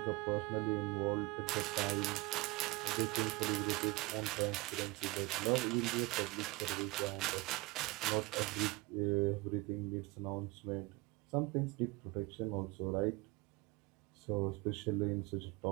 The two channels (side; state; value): left; quieter; 23.0 dB